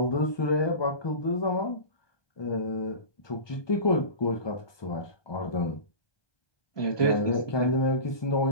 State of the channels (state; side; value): late; right; 1.2 ms